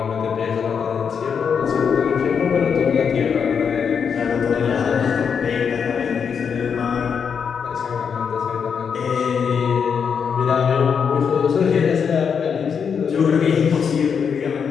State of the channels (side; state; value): right; quieter; 6.7 dB